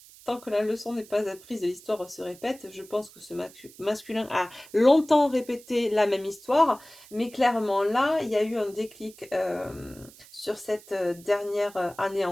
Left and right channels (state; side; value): noise; right; hiss, 22 dB below the sound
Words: Tant que la leçon n'est pas apprise et l'histoire se répète, je pense que ce masculin a longtemps répété la même histoire, mais clairement là, il y a eu un déclic sur cette dernière année